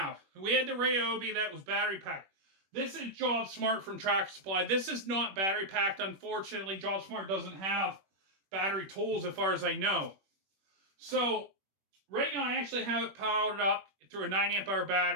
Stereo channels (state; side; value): late; left; 21 ms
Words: We had the Ryobi that was battery packed. This is Jobsmart from Tractor Supply. This is not battery packed. Unfortunately, Jobsmart doesn't have battery tools as far as I know. So right now I actually have it powered up through a 9 amp hour